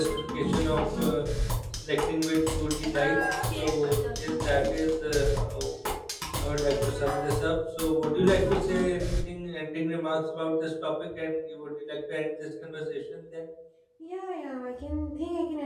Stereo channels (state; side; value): identical; both; correlation 1.00